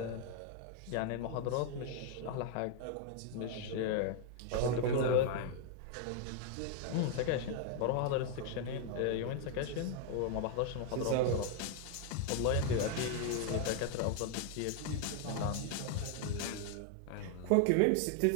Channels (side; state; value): both; different; correlation 0.00